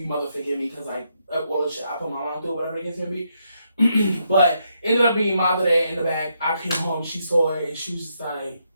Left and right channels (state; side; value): inverted; both; correlation -0.78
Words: mother forgive me because like all the shit I put my mom through, whatever it is gonna be. But ended up being madre in the back. I came home, she saw it, and she was just